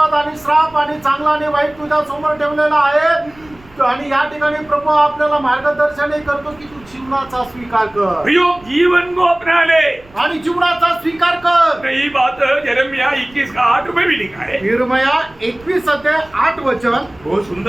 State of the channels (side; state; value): right; noise; rumble, 26 dB below the sound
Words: आणि श्राप आणि चांगला आणि वाईट तुझ्या समोर ठेवलेला आहे. आणि या ठिकाणी प्रभू आपल्याला मार्गदर्शनही करतो की तू जीवनाचा स्वीकार कर. प्रियो जीवन को अपना ले आणि जीवनाचा स्वीकार कर. यही बात यिर्मयाह 21:8 में भी लिखा है. यिर्मयाह 21 अध्याय 8 वचन. बहुत